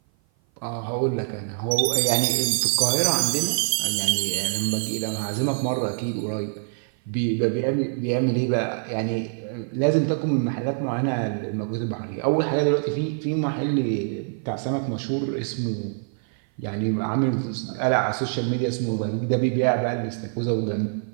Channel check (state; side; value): silent; left; 56 dB below the other